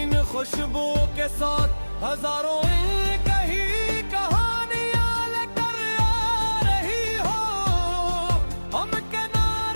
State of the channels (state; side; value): inverted; both; correlation -1.00